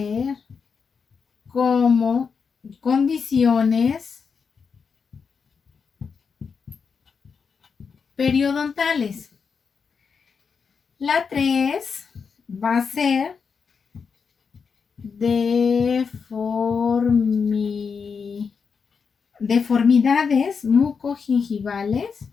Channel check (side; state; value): right; quieter; 5.8 dB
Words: como condiciones periodontales. La 3 va a ser deformidades mucogingivales